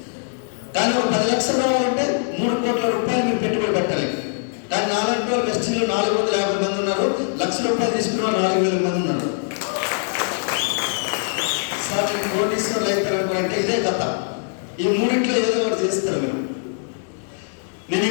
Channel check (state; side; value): silent; right; digital silence